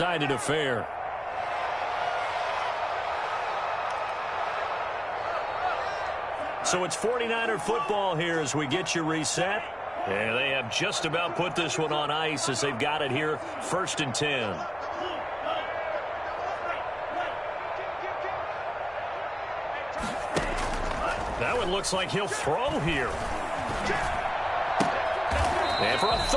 affair. So it's 49er football here as we get you reset. And they have just about put this one on ice as they've got it here, 1st and 10. That one looks like he'll throw here. And for a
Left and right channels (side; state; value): both; identical; correlation 1.00